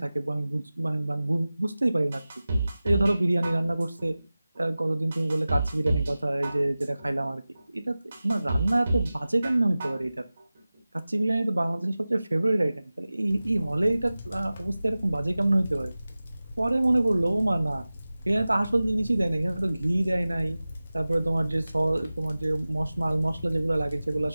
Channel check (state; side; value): inverted; both; correlation -0.97